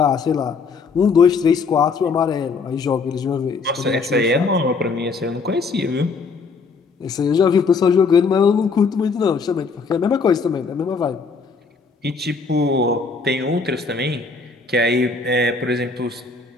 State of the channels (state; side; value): quieter; right; 4.7 dB